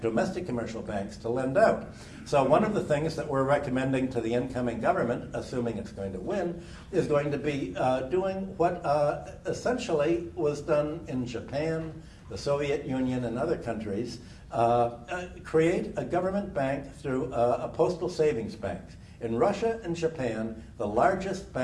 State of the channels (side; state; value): both; identical; correlation 1.00